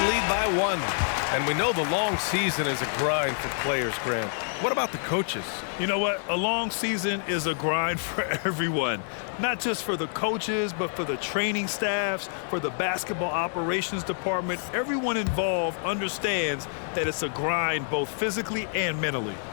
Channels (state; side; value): silent; right; 59 dB below the other